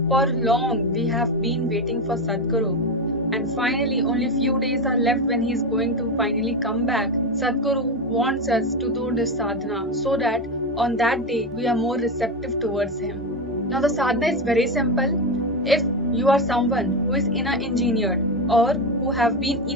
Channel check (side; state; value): both; normal; correlation 0.14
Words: for long we have been waiting for Sadhguru and finally only few days are left when he is going to finally come back. Sadhguru wants us to do this sadhana so that on that day we are more receptive towards him. Now the sadhana is very simple. If you are someone who is inner engineered or who have been